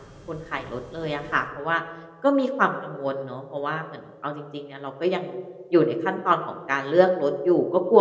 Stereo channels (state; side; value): identical; both; correlation 1.00